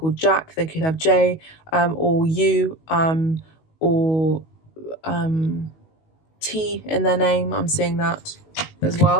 Jack. They could have J, or U, or T in their name. I'm seeing that as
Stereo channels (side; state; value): right; late; 19 ms